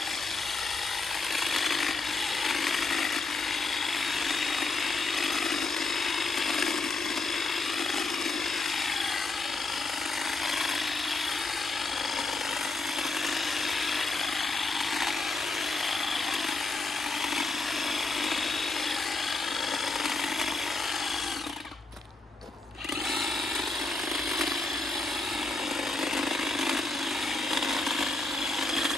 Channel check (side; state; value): right; quieter; 3.4 dB